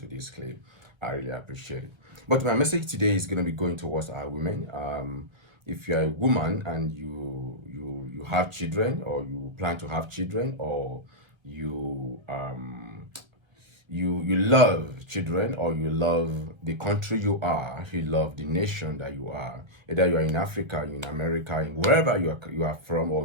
this clip. I really appreciate it. But my message today is going to be going towards our women. If you're a woman and you have children, or you plan to have children, or you love children, or you love the country you love the nation that you are, either you are in Africa, in America, in wherever you are from,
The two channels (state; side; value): late; left; 1.3 ms